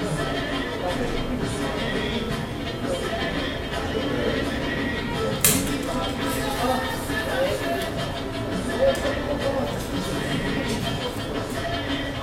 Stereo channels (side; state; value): both; identical; correlation 1.00